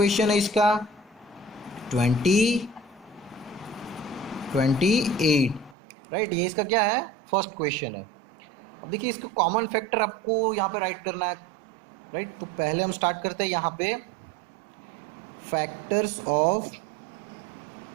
है इसका 28, राइट? ये इसका क्या है? फर्स्ट क्वेश्चन है। अब देखिए इसको कॉमन फैक्टर आपको यहाँ पे राइट करना है, राइट? तो पहले हम स्टार्ट करते हैं यहाँ पे फैक्टर्स ऑफ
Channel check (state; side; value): drops out; left; at 5.8 s